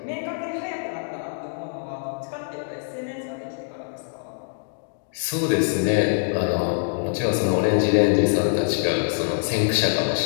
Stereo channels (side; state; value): right; silent; digital silence